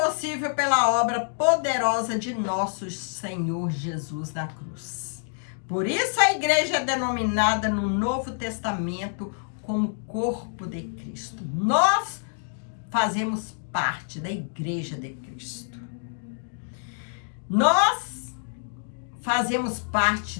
pela obra poderosa de nosso Senhor Jesus na cruz. Por isso a igreja é denominada no Novo Testamento como corpo de Cristo. Nós fazemos parte da igreja de Cristo. Nós fazemos parte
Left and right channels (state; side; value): silent; right; digital silence